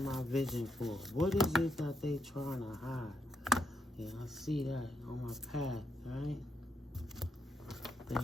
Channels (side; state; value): both; normal; correlation 0.79